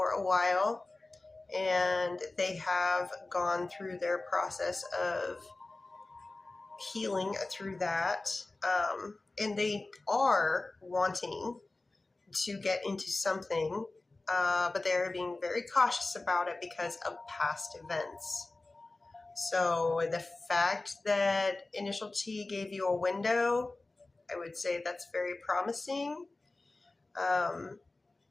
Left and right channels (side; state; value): right; quieter; 3.1 dB